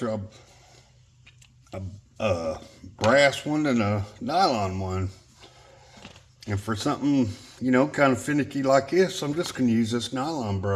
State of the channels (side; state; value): both; identical; correlation 1.00